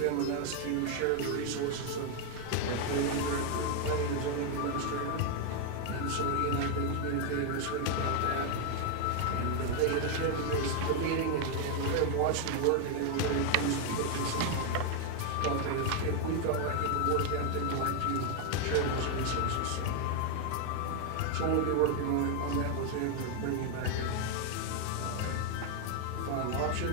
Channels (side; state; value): both; different; correlation 0.01